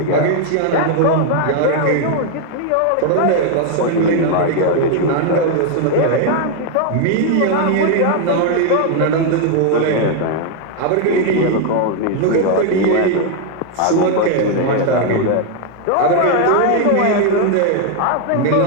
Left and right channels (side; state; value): both; different; correlation 0.01